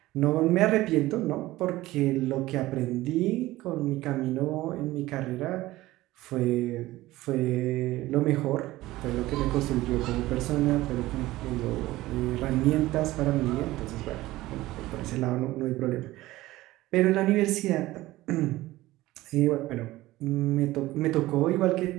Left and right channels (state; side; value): quieter; left; 17.4 dB